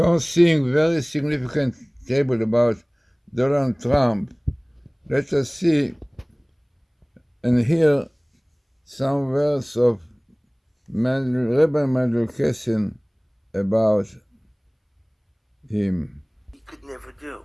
seeing very significant table about Donald Trump, let us see and hear some words of Rabbi Matityahu about him. He could never do,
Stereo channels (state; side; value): identical; both; correlation 1.00